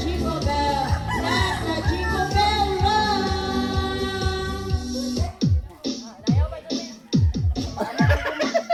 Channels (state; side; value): identical; both; correlation 1.00